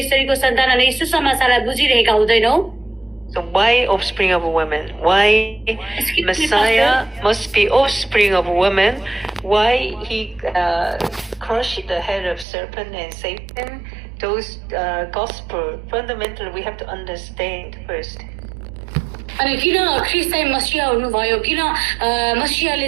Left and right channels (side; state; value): left; drops out; at 12.5 s